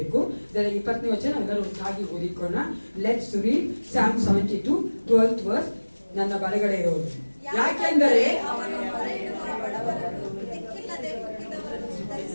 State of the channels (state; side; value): inverted; both; correlation -1.00